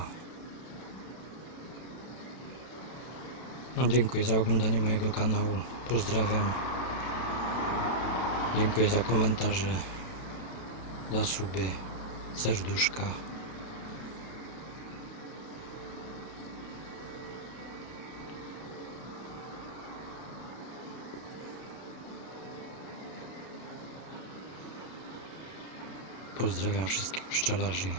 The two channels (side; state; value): right; late; 32 ms